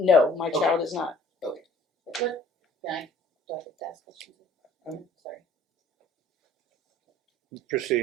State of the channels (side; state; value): both; normal; correlation 0.54